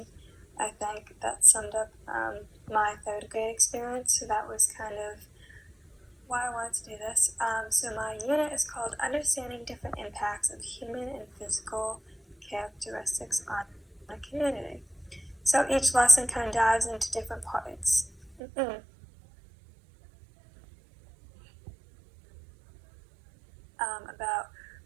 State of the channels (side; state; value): left; drops out; at 18.4 s